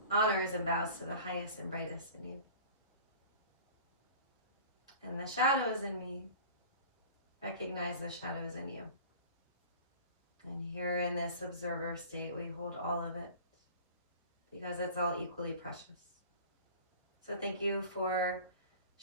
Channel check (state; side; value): inverted; both; correlation -0.43